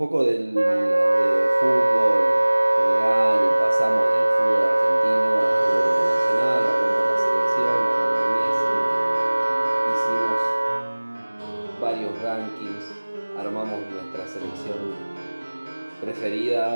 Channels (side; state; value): both; inverted; correlation -1.00